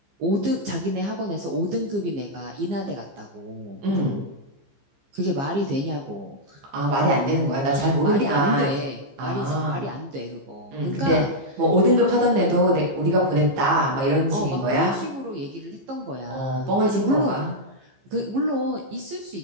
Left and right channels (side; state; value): left; late; 15 ms